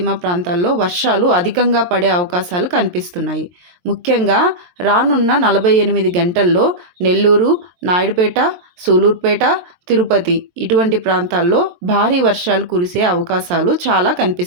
ప్రాంతాల్లో వర్షాలు అధికంగా పడే అవకాశాలు కనిపిస్తున్నాయి. ముఖ్యంగా రానున్న 48 గంటల్లో నెల్లూరు, నాయుడుపేట, సూలూరుపేట, తిరుపతి ఇటువంటి ప్రాంతాల్లో భారీ వర్షాలు కురిసే అవకాశాలు చాలా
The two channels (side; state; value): left; late; 23 ms